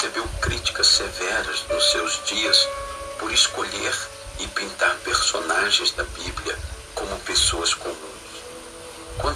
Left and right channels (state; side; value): identical; both; correlation 1.00